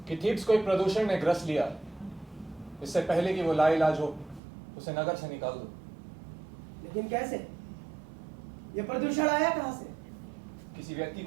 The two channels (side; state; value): left; drops out; at 4.4 s